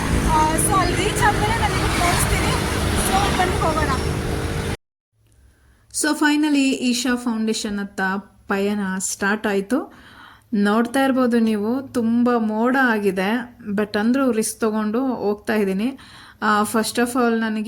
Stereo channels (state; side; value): identical; both; correlation 1.00